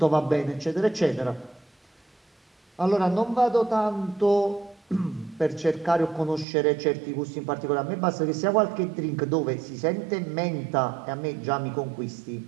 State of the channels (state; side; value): drops out; left; at 6.5 s